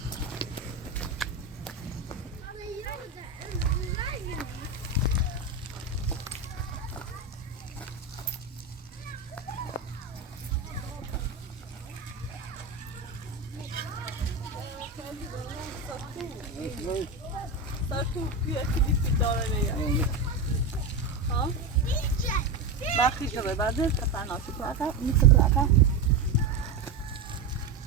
سر تو بیا کلیپی داره نیا ها بخی جبه بعد کتن آشی پلاکا میشه پلاکا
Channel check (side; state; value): left; quieter; 3.9 dB